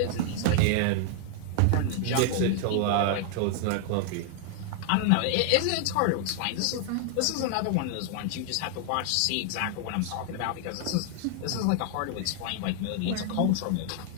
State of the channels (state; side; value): different; both; correlation 0.00